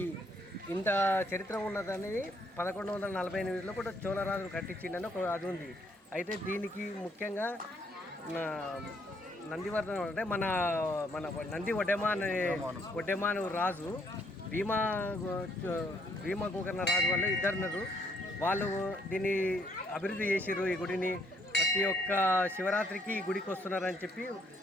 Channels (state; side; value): normal; both; correlation 0.69